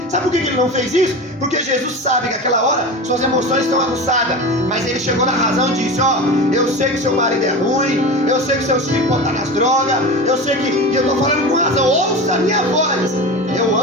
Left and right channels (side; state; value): both; normal; correlation 0.28